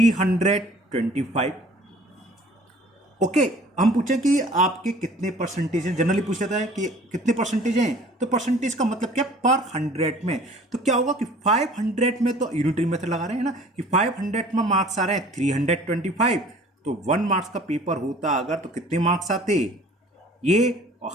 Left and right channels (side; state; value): both; normal; correlation 0.50